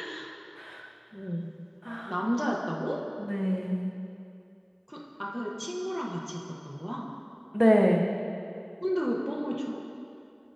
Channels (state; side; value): identical; both; correlation 1.00